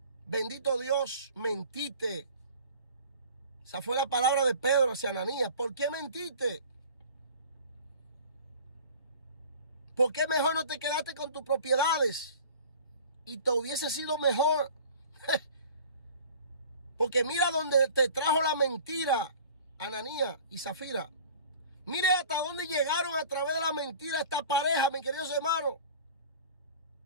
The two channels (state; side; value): inverted; both; correlation -0.44